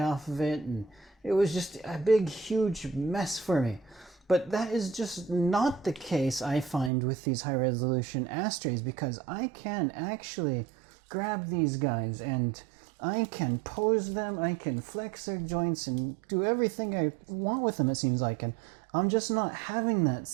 off of it, and it was just a big, huge mess for me. But that is just not the case, I find, with these high-resolution Astrays, because I can actually grab these guys and I can pose them, I can flex their joints and do everything I want with them, it seems like. And I'm just not having that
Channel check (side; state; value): left; drops out; at 6.9 s